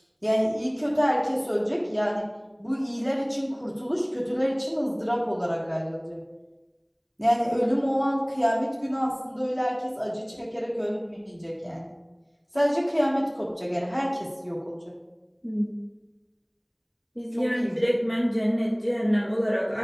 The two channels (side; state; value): both; identical; correlation 1.00